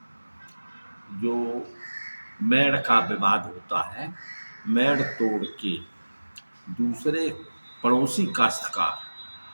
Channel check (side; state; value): both; inverted; correlation -1.00